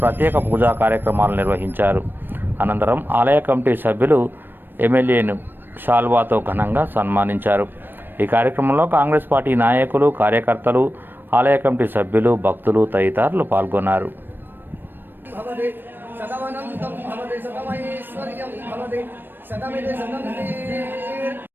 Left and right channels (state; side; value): late; left; 0.095 ms